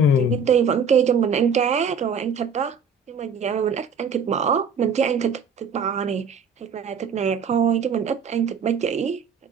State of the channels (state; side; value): quieter; left; 4.8 dB